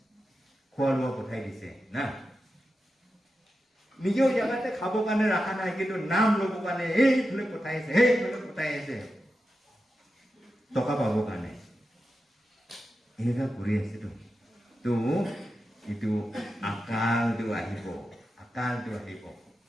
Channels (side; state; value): both; normal; correlation 0.90